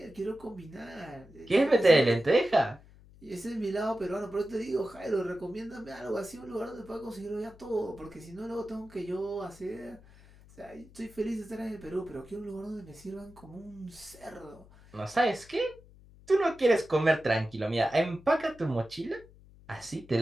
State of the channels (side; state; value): left; noise; hum, 23 dB below the sound